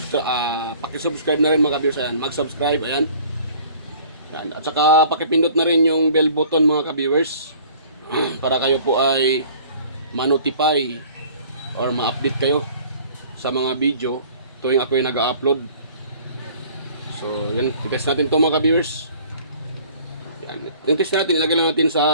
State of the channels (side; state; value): both; inverted; correlation -0.51